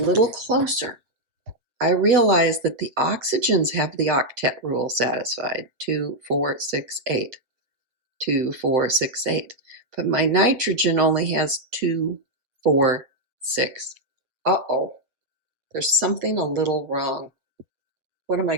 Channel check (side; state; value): left; late; 7.6 ms